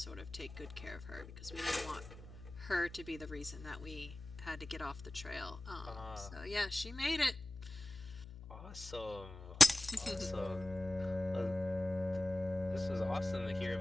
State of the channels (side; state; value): left; noise; hum, 14 dB below the sound